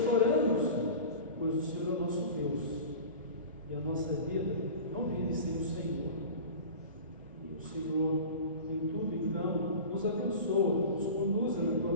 pois o Senhor é o nosso Deus, e a nossa vida não vive sem o Senhor. E o Senhor, em tudo, então, nos abençoa, nos conduza na Tua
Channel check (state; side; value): inverted; both; correlation -0.35